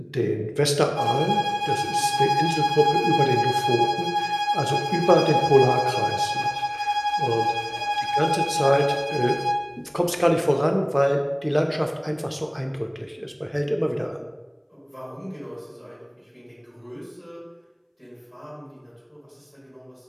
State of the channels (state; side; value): identical; both; correlation 1.00